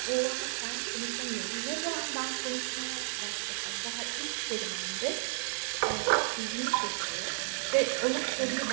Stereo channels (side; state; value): left; silent; 56 dB below the other